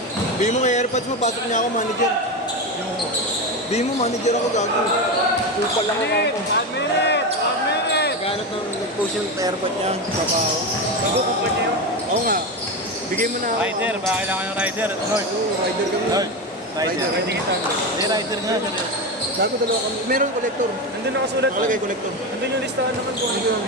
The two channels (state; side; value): normal; both; correlation 0.17